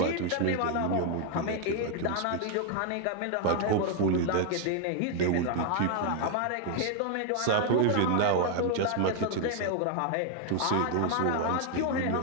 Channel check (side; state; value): both; different; correlation 0.00